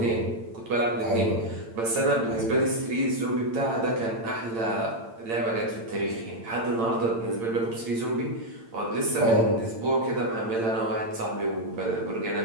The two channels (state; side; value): late; left; 8.8 ms